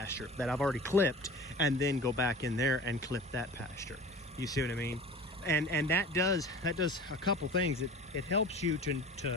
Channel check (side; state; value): both; normal; correlation 0.38